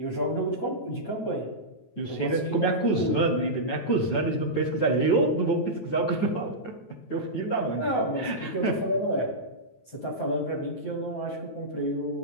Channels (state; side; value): late; right; 9.2 ms